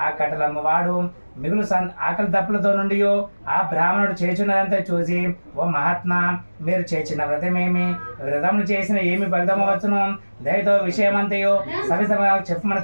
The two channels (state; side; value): inverted; both; correlation -1.00